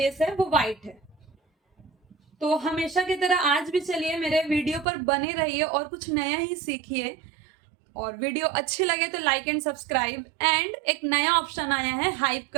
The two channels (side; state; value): left; drops out; at 4.9 s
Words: है वो व्हाइट है। तो हमेशा की तरह आज भी चलिए मेरे वीडियो पर बने रहिए और कुछ नया ही सीखिए। और वीडियो अच्छी लगे तो लाइक एंड सब्सक्राइब, एंड एक नया ऑप्शन आया है हाइप